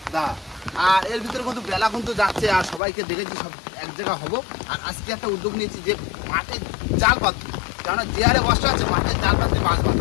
দাদা। আর এর ভিতরে কিন্তু বেলা কিন্তু যাচ্ছে, আর সবাইকে দেখেছি সব এক জায়গা হবো। আর আজকে একটা উদ্যোগ নিয়েছি যে মাঠে জাল পাতবো, কেননা যে হারে বর্ষা আছে মাঠে জাল পাততে মাছ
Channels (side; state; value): right; drops out; at 2.8 s